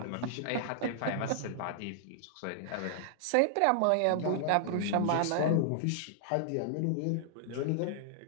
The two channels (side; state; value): both; different; correlation -0.01